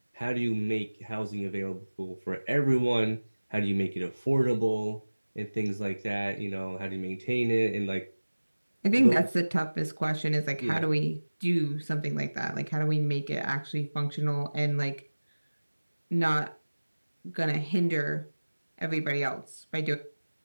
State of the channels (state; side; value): inverted; both; correlation -1.00